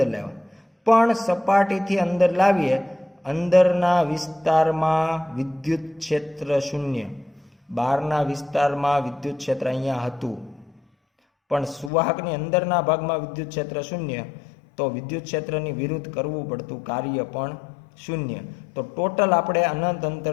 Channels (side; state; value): right; drops out; at 11.9 s